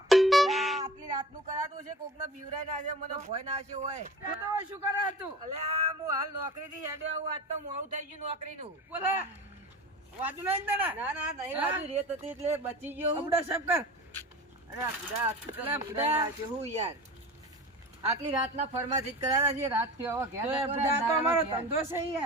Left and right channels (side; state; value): both; normal; correlation 0.37